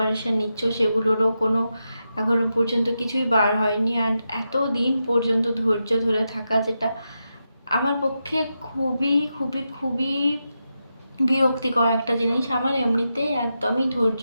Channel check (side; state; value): both; inverted; correlation -0.88